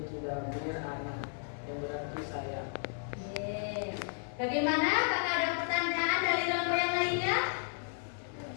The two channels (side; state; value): right; silent; 55 dB below the other